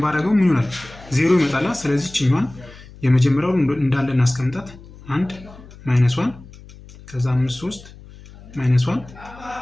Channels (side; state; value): left; noise; hum, 20 dB below the sound